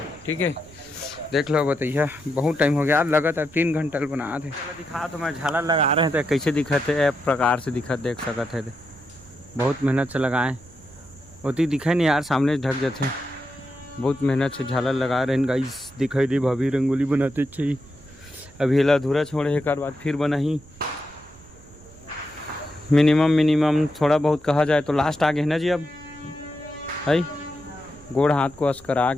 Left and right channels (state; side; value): noise; right; rumble, 23 dB below the sound